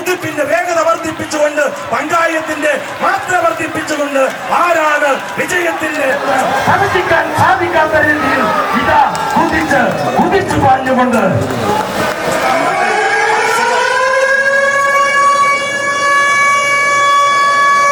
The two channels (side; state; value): both; identical; correlation 1.00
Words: വേഗത വർദ്ധിപ്പിച്ചുകൊണ്ട്, പങ്കായത്തിന്റെ മാത്ര വർദ്ധിപ്പിച്ചുകൊണ്ട് ആരാണ് വിജയത്തിന്റെ സാധിക്കാൻ സാധിക്കാത്ത രീതിയിൽ ഇതാ കുതിച്ചു പാഞ്ഞുകൊണ്ട്